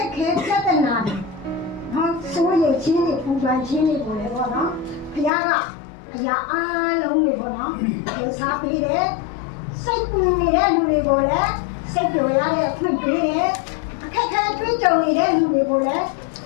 က်ခဲပြဿနာတွေနော်စိုးရိမ်ခြင်းတွေပူပန်ခြင်းတွေပေါ်လေပေါ့နော်ဘုရားကအရာအားလုံးတွေပေါ့နော်ဒီစားပေးတယ်စိတ်ပူနေတဲ့လူတွေကိုလည်းစိတ်ကြော်ရတဲ့အခွင့်ပေးတယ်အခက်ခဲတွေးကြုံနေတဲ့လူတွေကိုလည်း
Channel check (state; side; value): drops out; right; at 5.3 s